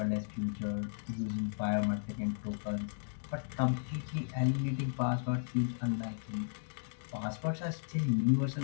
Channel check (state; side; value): silent; right; digital silence